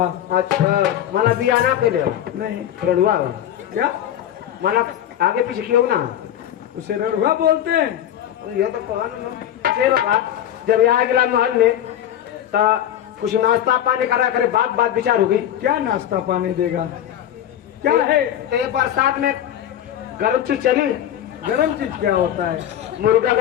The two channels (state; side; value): quieter; right; 11.0 dB